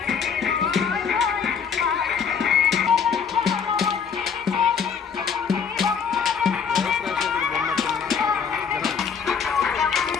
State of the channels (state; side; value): quieter; right; 6.6 dB